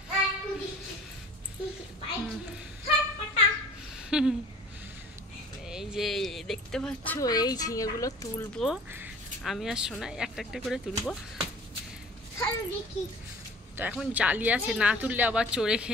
এই যে দেখতে পাচ্ছ এই ঝিঙেগুলো তুলবো আমি আর সোনা, একটা একটা করে তুলবো। তো এখন জালি আছে, না তুললে আবার চোরে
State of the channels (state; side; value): normal; both; correlation 0.46